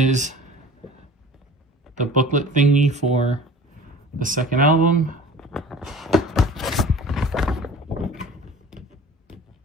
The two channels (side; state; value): both; normal; correlation 0.43